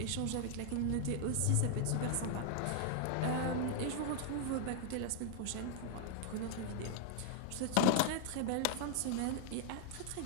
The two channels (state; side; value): different; both; correlation 0.00